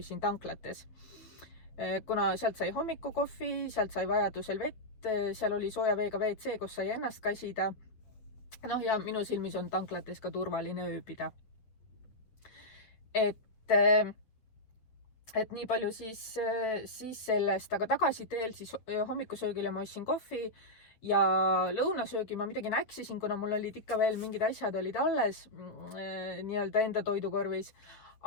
tanklates. Kuna sealt sai hommikukohvi, sealt sai vajadusel vett, seal oli sooja veega WC, kus sai ennast kasida. Ja minu silmis on tanklates ka turvaline ööbida. Et nii palju siis sellest, aga tagasiteel siis hommikusöögile ma ostsin kohvi ja lõunasöögi ma midagi näksisin, kuna mul olid ikka veel mingid asjad olid alles nii-öelda enda toidukorvis.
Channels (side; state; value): right; late; 9.3 ms